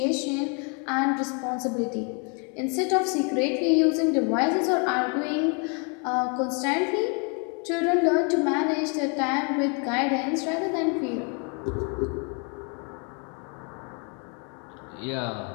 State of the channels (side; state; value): right; quieter; 36.6 dB